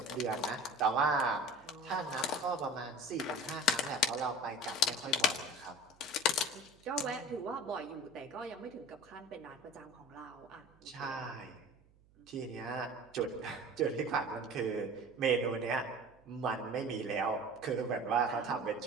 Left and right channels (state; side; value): noise; right; hum, 29 dB below the sound